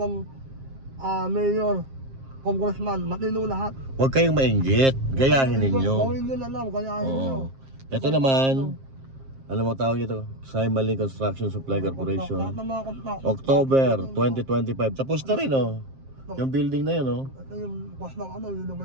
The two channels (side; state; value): left; late; 7.5 ms